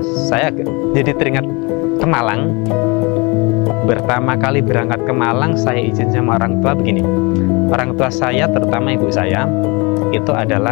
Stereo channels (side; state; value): right; quieter; 27.9 dB